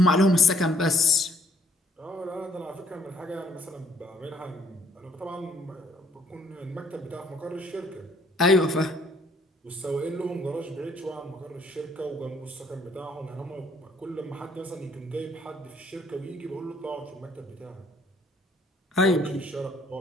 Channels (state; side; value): normal; both; correlation 0.64